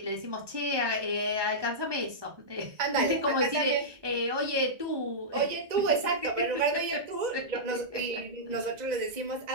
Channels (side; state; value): left; late; 1.2 ms